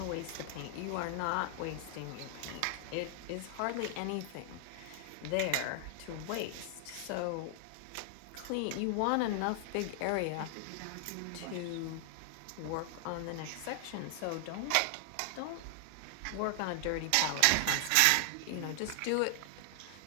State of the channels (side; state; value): both; different; correlation 0.00